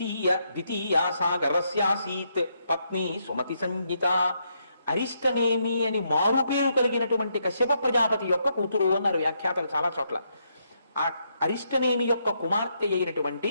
సాగరస్యాసీత్ పత్ని సుమతి సంజ్ఞిత. అరిష్టనేమి అని మారుపేరు కలిగినటువంటి కశ్యప ప్రజాపతి యొక్క కూతురు అన్నారు వ్యాఖ్యాతలు చాలా చోట్ల. ఆ అరిష్టనేమి యొక్క కుమార్తె అయినటువంటి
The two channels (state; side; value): inverted; both; correlation -0.77